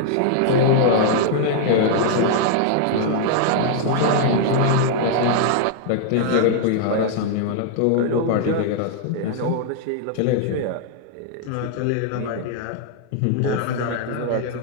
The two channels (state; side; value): different; both; correlation -0.01